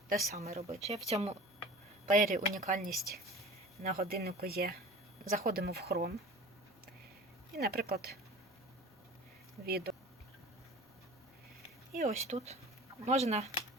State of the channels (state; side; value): normal; both; correlation 0.40